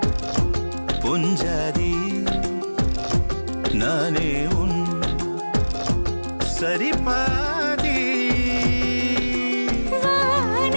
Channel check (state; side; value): inverted; both; correlation -1.00